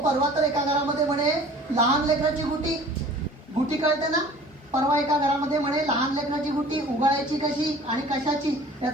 तर एका घरामध्ये म्हणे लहान लेकराची गुटी कळते ना, परवा एका घरामध्ये म्हणे लहान लेकराची गुटी उगाळायची कशी आणि कशाची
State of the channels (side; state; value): both; normal; correlation 0.47